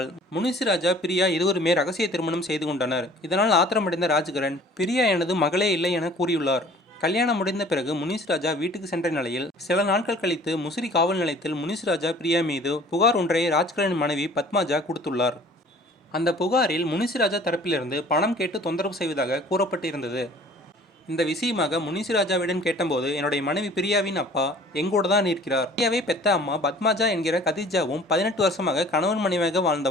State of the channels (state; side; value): normal; both; correlation 0.50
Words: முனிஸ்ராஜா பிரியா இருவருமே ரகசிய திருமணம் செய்து கொண்டனர். இதனால் ஆத்திரமடைந்த ராஜ்கிரண், பிரியா எனது மகளே இல்லை என கூறியுள்ளார். கல்யாணம் முடிந்த பிறகு முனிஸ்ராஜா வீட்டுக்கு சென்ற நிலையில் சில நாட்கள் கழித்து முசிறி காவல் நிலையத்தில் முனிஸ்ராஜா பிரியா மீது புகார் ஒன்றை ராஜ்கிரனின் மனைவி பத்மாஜா கொடுத்துள்ளார். அந்த புகாரில் முனிஸ்ராஜா தரப்பிலிருந்து பணம் கேட்டு தொந்தரவு செய்வதாக கூறப்பட்டிருந்தது. இந்த விஷயமாக முனிஸ்ராஜாவிடம் கேட்டபோது, என்னுடைய மனைவி பிரியாவின் அப்பா எங்கூட தான் இருக்கிறார். பிரியாவை பெத்த அம்மா பத்மாஜா என்கிற கதிஜாவும் 18 வருஷமாக கணவன் மனைவியாக